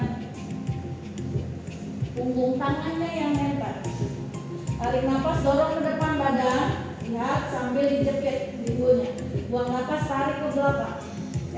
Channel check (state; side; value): identical; both; correlation 1.00